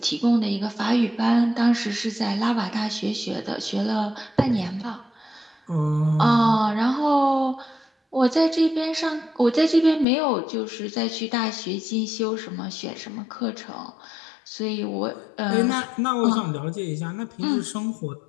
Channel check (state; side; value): drops out; right; at 10.1 s